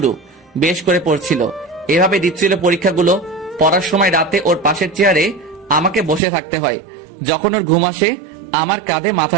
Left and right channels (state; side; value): drops out; left; at 6.2 s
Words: বেশ করে পড়ছিল, এভাবে দিচ্ছিল পরীক্ষাগুলো। পড়ার সময় রাতে ওর পাশের চেয়ারে আমাকে বসে থাকতে হয়। যখন ওর ঘুম আসে আমার কাঁধে মাথা